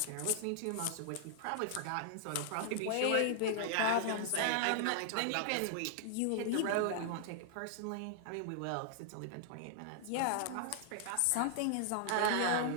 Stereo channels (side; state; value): both; different; correlation -0.01